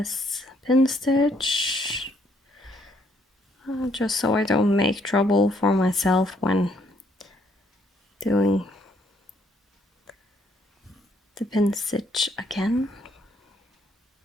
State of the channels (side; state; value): both; normal; correlation 0.69